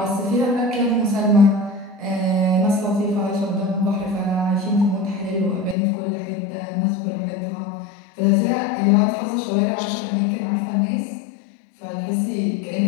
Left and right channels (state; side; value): drops out; right; at 5.8 s